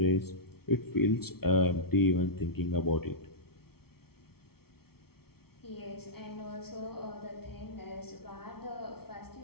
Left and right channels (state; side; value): late; right; 0.95 ms